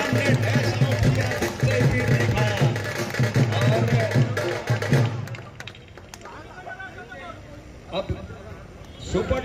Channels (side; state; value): both; identical; correlation 1.00